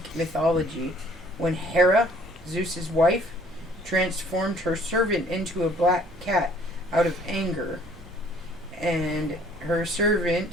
mythology when Hera, Zeus's wife, transformed her servant into a black cat out of anger. And her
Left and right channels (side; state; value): both; normal; correlation 0.57